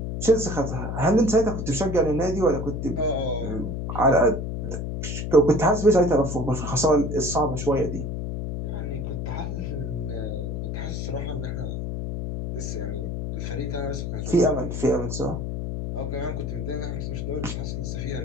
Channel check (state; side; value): noise; left; hum, 4 dB below the sound